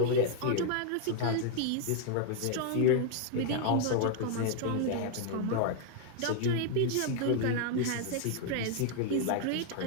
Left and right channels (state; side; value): different; both; correlation 0.00